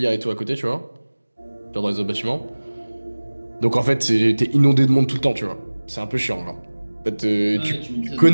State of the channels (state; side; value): inverted; both; correlation -1.00